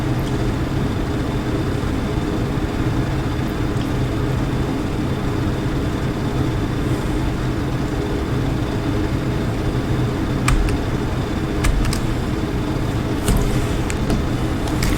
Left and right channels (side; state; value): both; identical; correlation 1.00